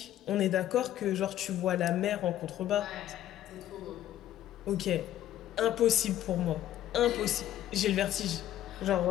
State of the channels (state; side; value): quieter; right; 12.5 dB